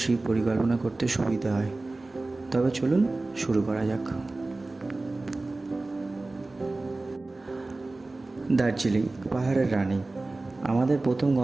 পরিকল্পনা করতে সুবিধা হয়। তবে চলুন শুরু করা যাক। দার্জিলিং, পাহাড়ের রানী। আমাদের প্রথম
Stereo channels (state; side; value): quieter; left; 3.2 dB